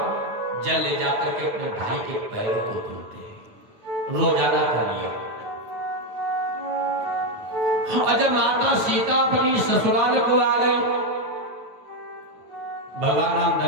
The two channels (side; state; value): left; late; 9.2 ms